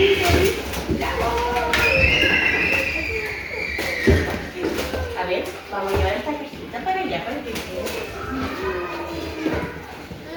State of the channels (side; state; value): both; identical; correlation 1.00